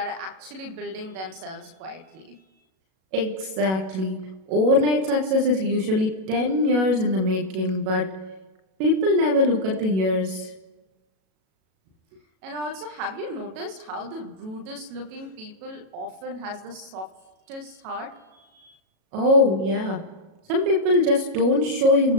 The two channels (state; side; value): late; left; 37 ms